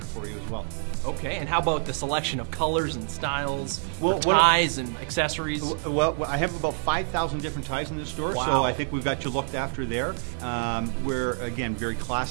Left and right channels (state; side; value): silent; left; 58 dB below the other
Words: for you as well. Okay, and how about the selection of colors and styles, ties and accessories? Well, I have about 5,000 different ties in this store, Wow. so I think we've got you looked after there. We're, again, very